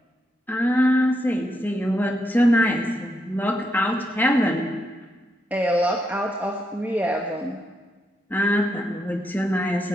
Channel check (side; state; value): both; normal; correlation 0.81